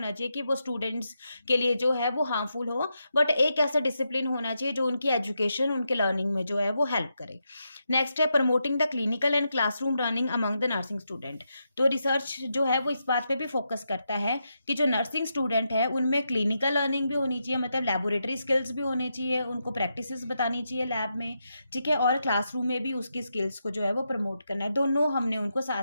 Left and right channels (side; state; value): both; inverted; correlation -0.84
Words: चाहिए कि वो स्टूडेंट्स के लिए जो है वो हार्मफुल हो, बट एक ऐसा डिसिप्लिन होना चाहिए जो उनकी एजुकेशन, उनके लर्निंग में जो है वो हेल्प करे। नेक्स्ट है promoting the clinical and classroom learning among the nursing student. तो रिसर्च जो है वो इस बात पे भी फोकस करता है कि जो नर्सिंग स्टूडेंट है उनमें क्लिनिकल लर्निंग भी होनी चाहिए, मतलब लेबोरेटरी स्किल्स भी होने चाहिए, उनको प्रैक्टिसेस बतानी चाहिए लैब में, ठीक है, और क्लासरूम में भी उसकी स्किल्स को जो है वो प्रमोट करना है। दोनों हमने उनको